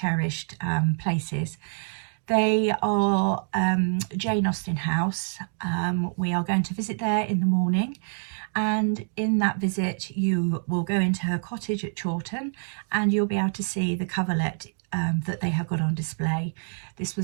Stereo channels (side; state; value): left; silent; 61 dB below the other